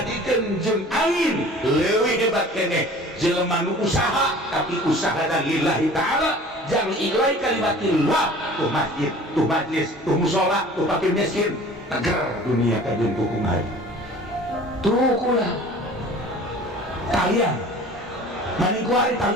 jeung angin, leuwih hebat keneh jelema nu usaha tapi usahana lillahi taala, jang ilai kalimatillah, tuh masjid, tuh majlis, tuh mushola, tuh fakir miskin, tegar dunia kajun kukumari. Tuh kula Talian, maning kuari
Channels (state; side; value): normal; both; correlation 0.45